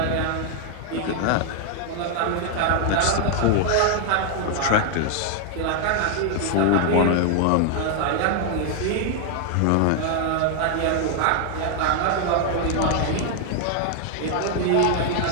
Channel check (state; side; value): different; both; correlation 0.00